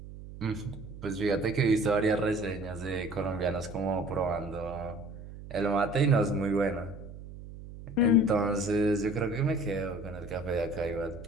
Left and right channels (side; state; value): right; noise; hum, 14 dB below the sound